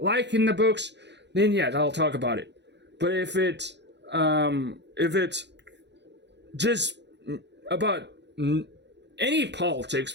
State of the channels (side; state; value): left; late; 0.51 ms